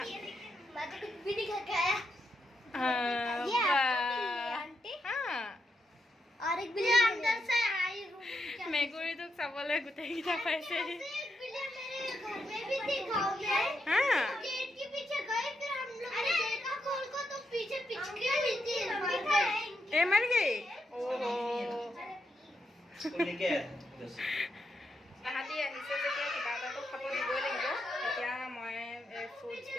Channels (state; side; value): normal; both; correlation 0.83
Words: মেকুৰী তোক চাবলৈ গোটেইকেইটা পাইছে। मर गई। তাহাঁতি আহিছে যেতিয়া কিবা এটাতো খাব দিবই লাগিব। এতিয়া মই